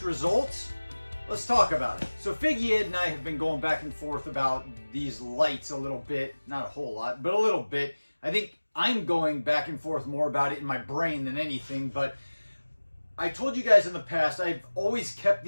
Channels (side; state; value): both; inverted; correlation -1.00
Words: results? Let's talk about it. So Figgy Ed and I have been going back and forth about these lights a little bit, not a whole lot, but a little bit. I think I'm going back and forth more about it in my brain than anything, but I told you guys in the past, I've always kept